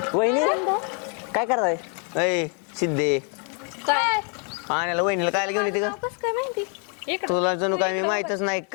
वहिनी काय करताय? अय सिद्धे, काय आणायला वहिनीला काय घेऊन येते का? कस काय माहिती इकडं तुला जणू काय मी माहितच नाही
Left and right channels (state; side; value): quieter; right; 40.0 dB